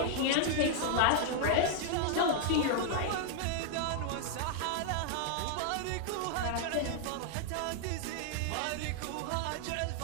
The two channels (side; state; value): both; different; correlation 0.00